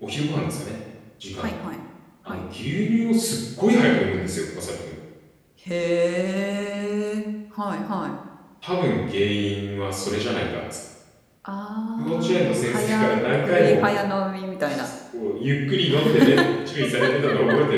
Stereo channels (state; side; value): identical; both; correlation 1.00